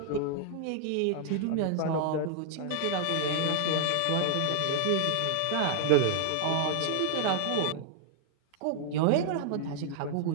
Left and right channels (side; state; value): both; different; correlation 0.00